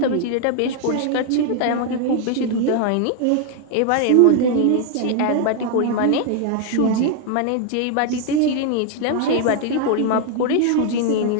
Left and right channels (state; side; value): different; both; correlation 0.00